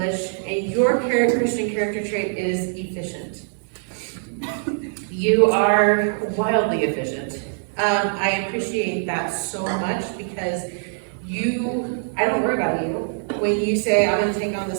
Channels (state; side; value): silent; left; 59 dB below the other